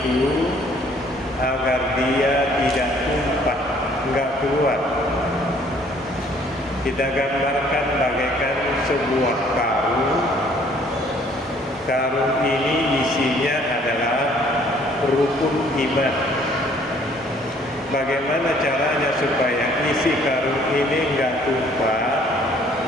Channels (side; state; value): both; normal; correlation 0.60